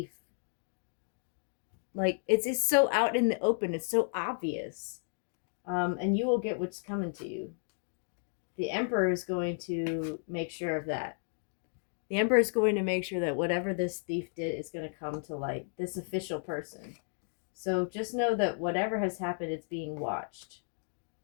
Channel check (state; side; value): silent; right; digital silence